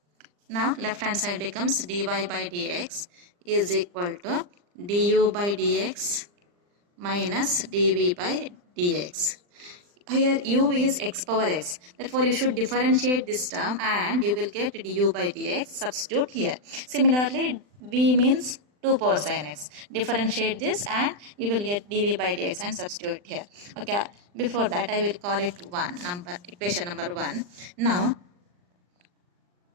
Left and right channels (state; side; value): late; left; 39 ms